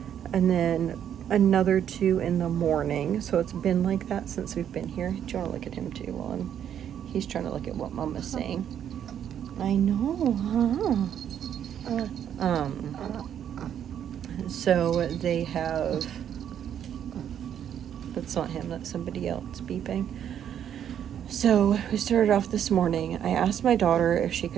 and then another 2 in the morning. So it's been like that since we've been here. Do you want to look at him too while he's trying to look at what Mama's saying? I know, huh? So they have, that's not him, that's somebody else beeping. So we started off this morning. I asked my daughter if she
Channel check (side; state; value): left; quieter; 9.5 dB